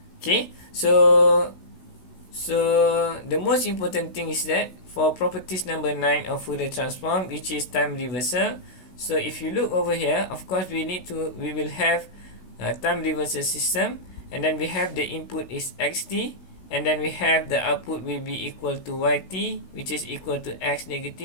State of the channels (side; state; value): right; late; 16 ms